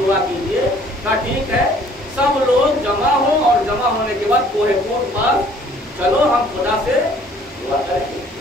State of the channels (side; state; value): both; normal; correlation 0.56